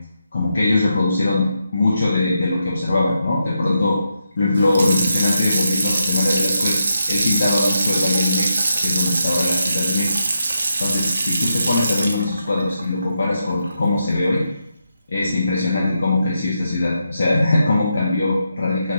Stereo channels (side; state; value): both; inverted; correlation -0.84